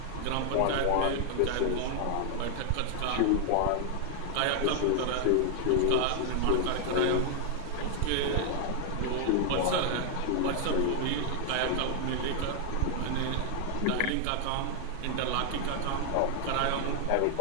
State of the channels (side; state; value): both; different; correlation 0.00